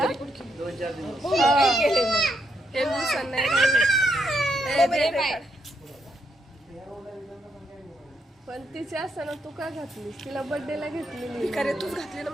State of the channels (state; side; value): normal; both; correlation 0.78